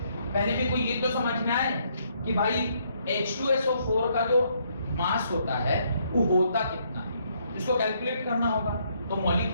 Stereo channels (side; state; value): both; inverted; correlation -0.71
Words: पहले में कोई ये तो समझ में आए कि भाई H2SO4 का जो मास होता है वो होता कितना है, इसको कैलकुलेट करना होगा। तो